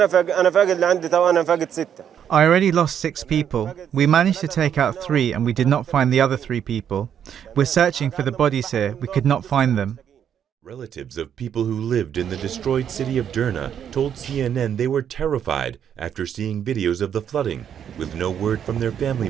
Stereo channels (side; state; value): left; quieter; 8.9 dB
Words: I already lost 6 people. We managed to take out 3 and we did not find the other 3 people. We're searching for the bodies here. We could not find them. Relatives of people who lived in the destroyed city of Derna told CNN they were terrified after seeing videos of the flooding, with no word from their family